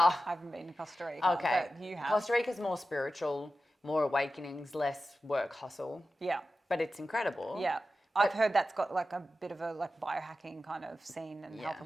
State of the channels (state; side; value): normal; both; correlation 0.93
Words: haven't been to Costa Rica. Okay. But you have. Costa Rica's more spiritual, more awakenings, less work hustle. Yeah. But it's incredible. Yeah. I've heard that's got like a bit of a like biohacking kind of scene and health and